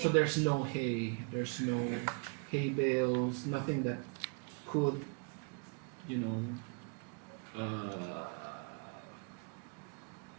there's no hay, there's no hay bales, nothing that could,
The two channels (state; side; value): quieter; left; 35.8 dB